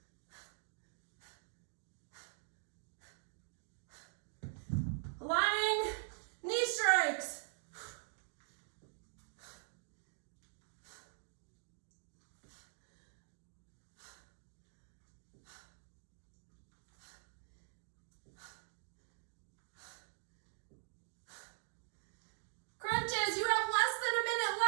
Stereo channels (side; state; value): left; silent; digital silence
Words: Lying knee strikes. Crunches, you have less than a minute